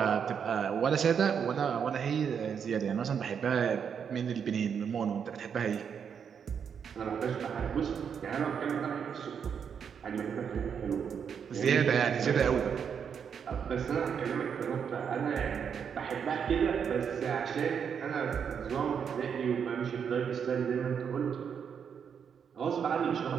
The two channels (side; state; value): left; quieter; 7.3 dB